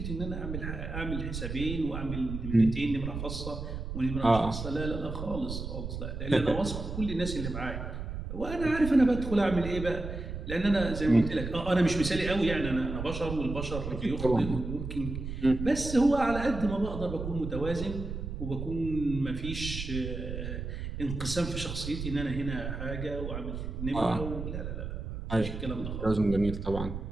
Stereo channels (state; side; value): noise; right; rumble, 6 dB below the sound